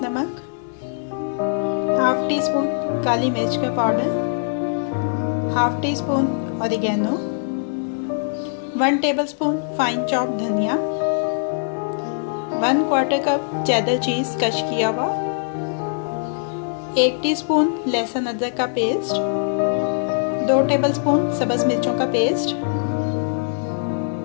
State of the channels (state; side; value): silent; right; 61 dB below the other